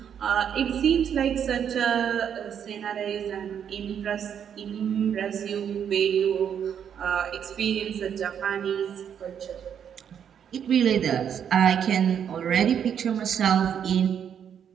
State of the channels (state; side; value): quieter; left; 8.4 dB